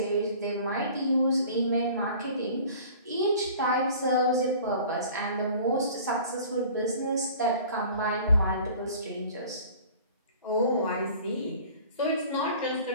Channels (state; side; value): inverted; both; correlation -0.46